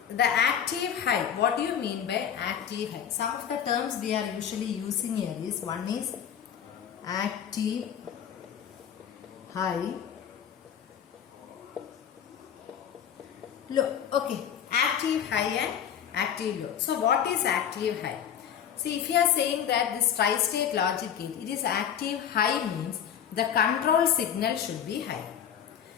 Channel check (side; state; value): right; quieter; 8.8 dB